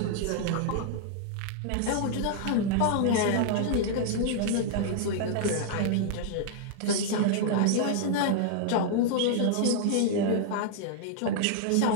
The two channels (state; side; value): different; both; correlation 0.00